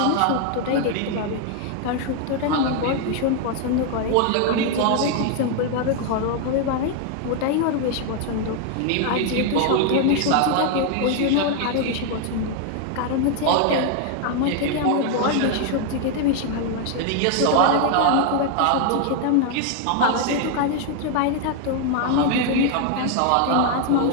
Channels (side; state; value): both; different; correlation 0.01